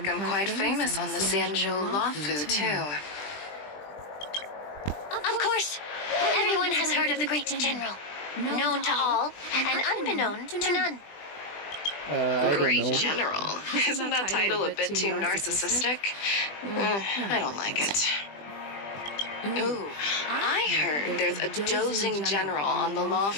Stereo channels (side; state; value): right; late; 20 ms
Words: I'm quite famous on the Xianzhou Lawfu, too. Of course, everyone has heard of the great general. Known to all, and unbeknown to none. Great General? Isn't that title a bit too narcissistic? I don't like it. Ooh, I heard there's a dozing general on the